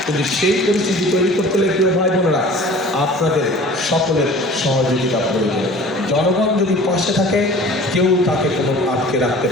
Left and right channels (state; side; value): normal; both; correlation 0.45